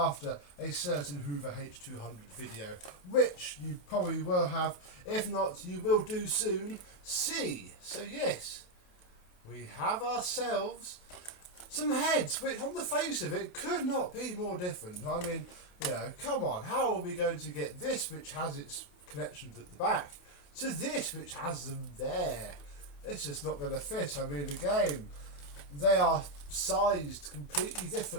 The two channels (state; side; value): late; right; 28 ms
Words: a certain Hoover H-200 video, which you probably will have, if not you will do soon see. So yes, we have ourselves some heads which on the face of it could not be more different. I mean, you know, come on, how are we going to get this which has its connections at the back to this which has them there? It's just not going to fit. I mean, again, they are sized completely